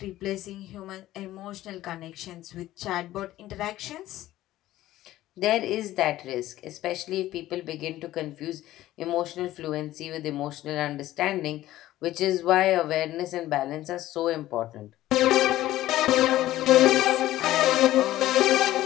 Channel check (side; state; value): right; quieter; 15.0 dB